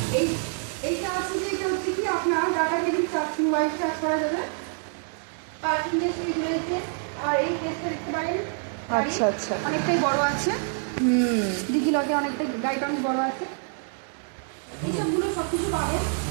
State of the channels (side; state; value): left; silent; 61 dB below the other